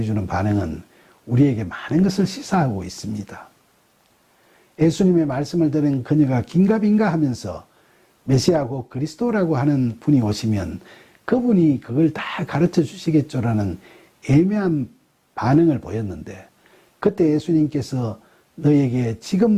반응은 우리에게 많은 것을 시사하고 있습니다. 예수님의 말씀을 들은 그녀가 긴가민가 하면서 메시아 곧 그리스도라고 하는 분이 오시면 그분이 그걸 다 가르쳐 주시겠죠라는 애매한 반응을 보였는데 그때 예수님께서 너에게 지금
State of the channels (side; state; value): both; identical; correlation 1.00